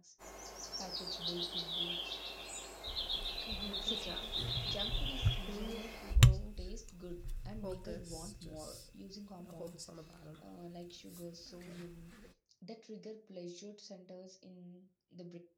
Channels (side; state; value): both; identical; correlation 1.00